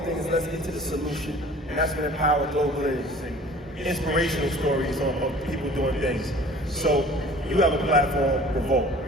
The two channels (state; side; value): normal; both; correlation 0.47